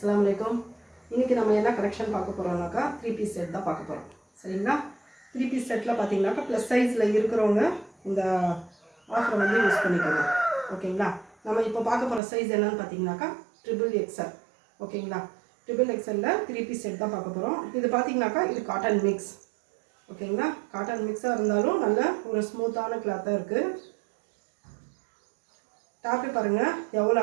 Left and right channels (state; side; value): drops out; left; at 12.2 s